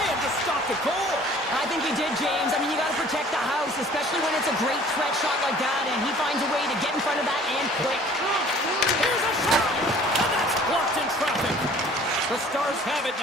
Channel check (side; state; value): both; normal; correlation 0.51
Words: have just stopped the goal. I think he did, James. I mean, you got to protect the house, especially when it's a great threat shot like that, and he finds a way to get in front of that and quick. Here's a shot, and that's blocked in traffic. The Stars have it